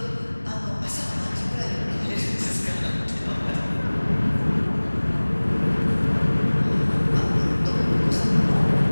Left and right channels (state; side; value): inverted; both; correlation -1.00